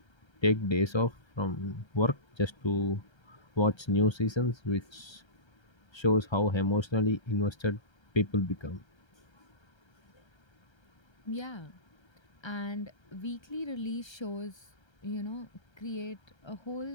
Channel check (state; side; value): late; right; 1.3 ms